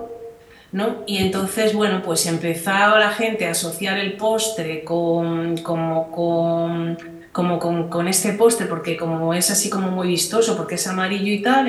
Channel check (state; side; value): identical; both; correlation 1.00